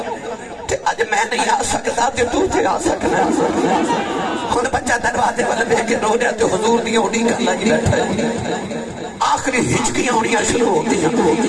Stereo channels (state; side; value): identical; both; correlation 1.00